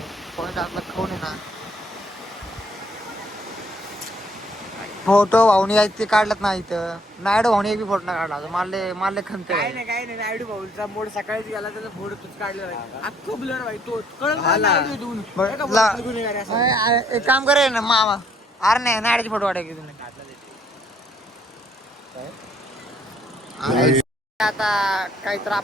पॉईंट असला खाऊन आहे ना. फोटो भाऊनी आहेत ते काढलात ना इथं. नायडू भाऊनी एक बी फोटो नाही काढला मारले खंते. काय नाही नायडू भाऊचा मोड सकाळीच गेला त्याचा फोटो तूच काढला अख्खं ब्लर भाई तो एक काम करे ना मामा अरे नाही नायडूचे फोटो काढाय की तुम्ही आता काहीतर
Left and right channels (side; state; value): both; normal; correlation 0.66